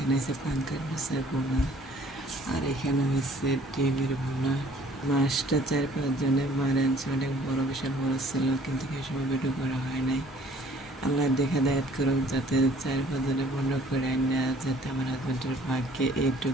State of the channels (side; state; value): both; normal; correlation 0.56